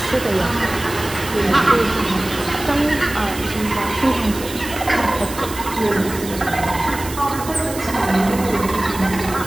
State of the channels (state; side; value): noise; right; hiss, 12 dB below the sound